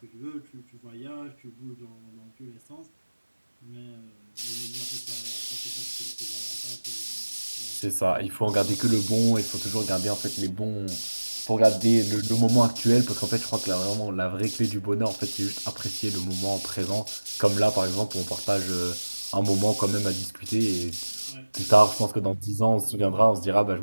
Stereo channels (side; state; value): both; inverted; correlation -1.00